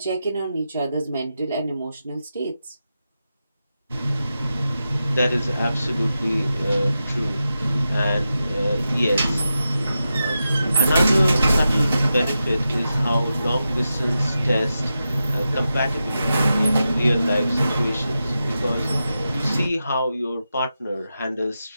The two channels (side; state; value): both; inverted; correlation -0.90